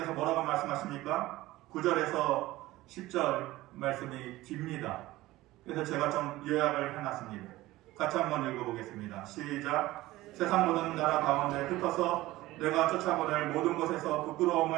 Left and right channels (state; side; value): quieter; left; 17.6 dB